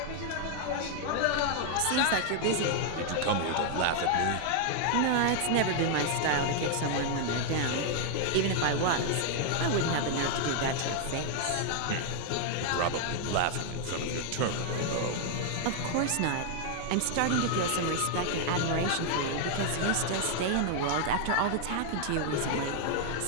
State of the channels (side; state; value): both; different; correlation 0.00